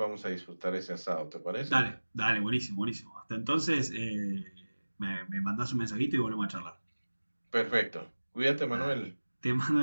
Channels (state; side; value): inverted; both; correlation -1.00